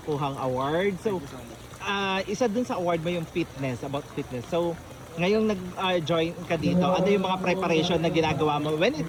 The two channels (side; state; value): both; identical; correlation 1.00